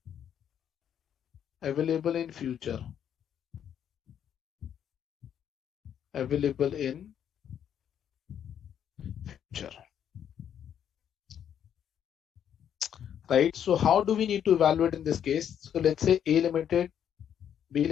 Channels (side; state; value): right; quieter; 9.2 dB